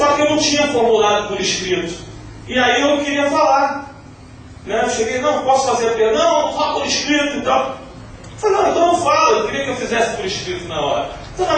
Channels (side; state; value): both; identical; correlation 1.00